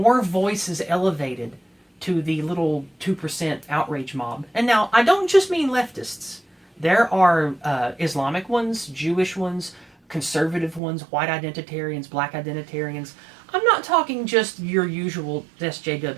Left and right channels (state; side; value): drops out; left; at 10.8 s